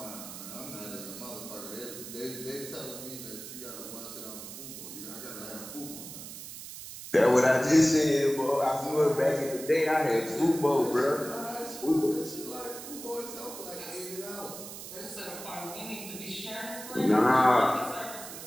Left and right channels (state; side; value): noise; right; hiss, 11 dB below the sound